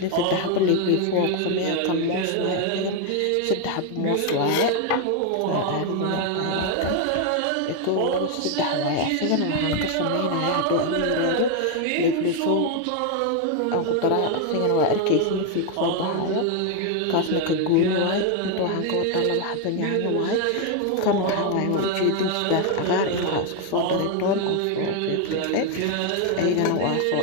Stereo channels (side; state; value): both; different; correlation 0.01